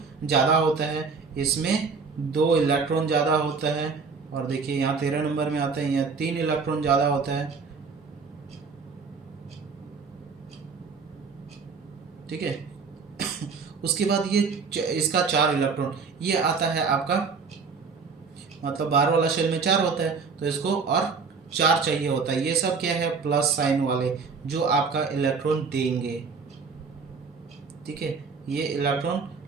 ज़्यादा होता है, इसमें 2 इलेक्ट्रॉन ज़्यादा होता है। और देखिए यहाँ 13 नंबर में आता है, यहाँ 3 इलेक्ट्रॉन ज़्यादा होता है। ठीक है। उसके बाद ये इसका 4 इलेक्ट्रॉन, ये आता है आपका, मतलब बाहर वाला शेल में 4 होता है, तो इसको और 4 चाहिए होता है। ये सब क्या है, प्लस साइन वाले जो आपका इलेक्ट्रॉन देंगे। ठीक है, ये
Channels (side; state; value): left; quieter; 5.0 dB